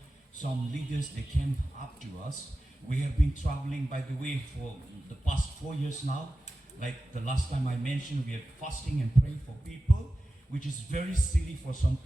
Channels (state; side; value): normal; both; correlation 0.95